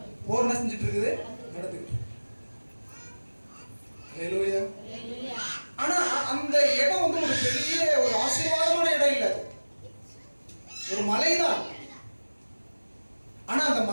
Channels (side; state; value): both; inverted; correlation -1.00